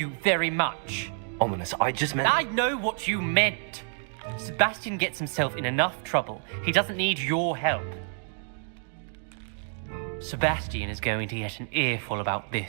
very much. Ominous, I just meant... I know what you meant. Sebastian gets himself in enough trouble. He doesn't need your help. Sebastian is going to get an earful about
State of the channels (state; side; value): silent; left; 59 dB below the other